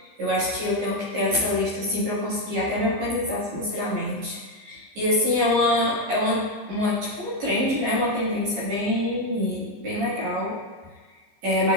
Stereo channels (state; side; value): late; left; 14 ms